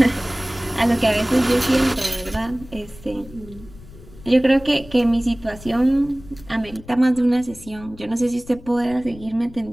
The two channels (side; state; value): left; noise; rumble, 19 dB below the sound